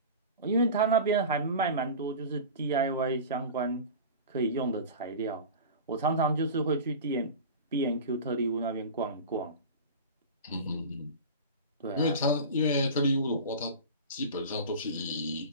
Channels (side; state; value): both; inverted; correlation -0.32